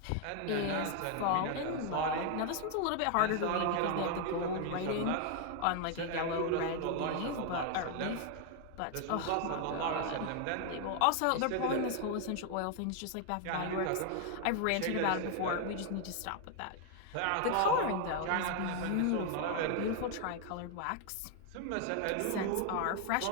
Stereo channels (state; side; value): different; both; correlation 0.00